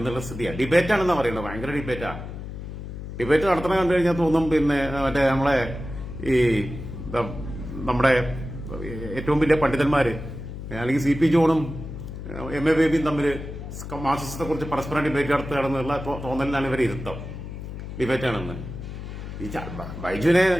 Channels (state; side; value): noise; left; hum, 9 dB below the sound